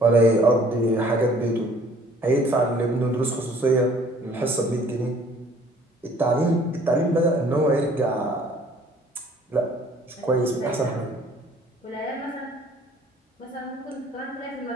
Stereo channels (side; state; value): both; normal; correlation 0.56